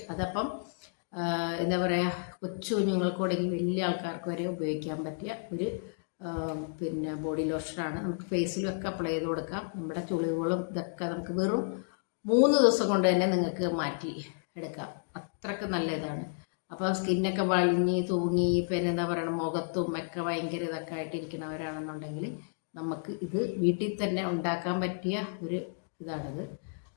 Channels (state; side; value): silent; right; digital silence